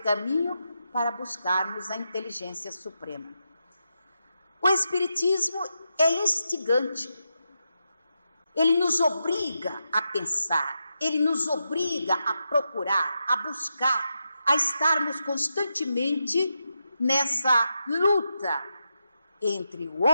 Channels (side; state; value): both; inverted; correlation -0.86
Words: caminho para buscarmos a inteligência suprema. O Espiritismo é instigante. Ele nos obriga a pensar, ele nos obriga a procurar, a buscar, a estarmos constantemente nessa luta entre o